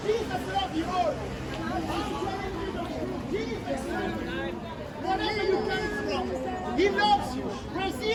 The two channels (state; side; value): identical; both; correlation 1.00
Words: Jesus love you all. Jesus, wherever you come from, He loves you.